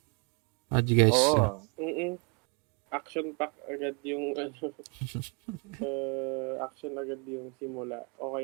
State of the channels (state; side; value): quieter; left; 32.3 dB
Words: How do you guys Action pack agad yung action agad yung simula.